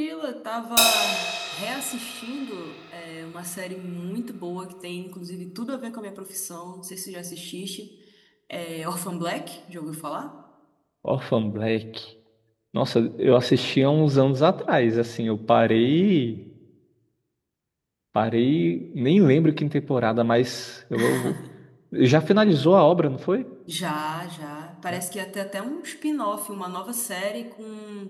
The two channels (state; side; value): identical; both; correlation 1.00